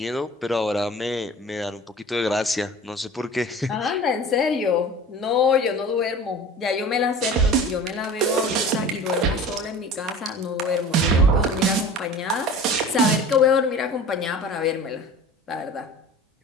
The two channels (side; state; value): both; normal; correlation 0.40